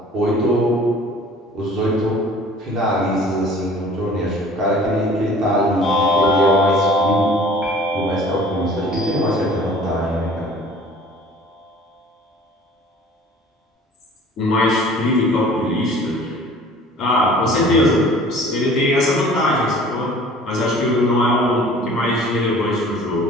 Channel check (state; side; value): normal; both; correlation 0.48